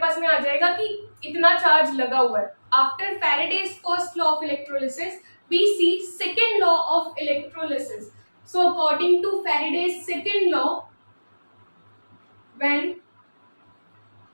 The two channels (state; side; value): inverted; both; correlation -1.00